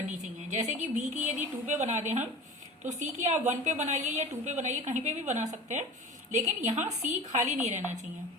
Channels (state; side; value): normal; both; correlation 0.37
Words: चाहिए। जैसे कि बी की यदि 2 पे बना दें हम, तो सी की आप 1 पे बनाइए या 2 पे बनाइए, कहीं पे भी बना सकते हैं, लेकिन यहाँ सी खाली नहीं रहना चाहिए।